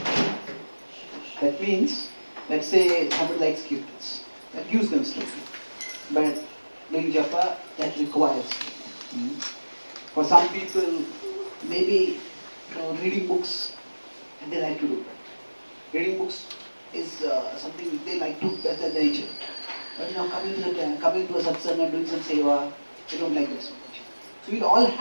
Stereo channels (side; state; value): both; inverted; correlation -1.00